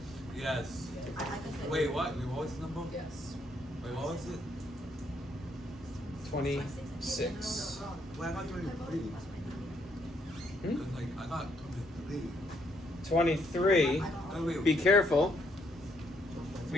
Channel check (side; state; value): both; normal; correlation 0.73